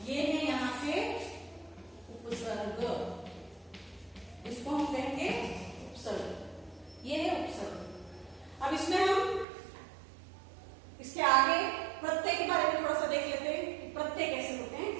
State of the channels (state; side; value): drops out; left; at 9.5 s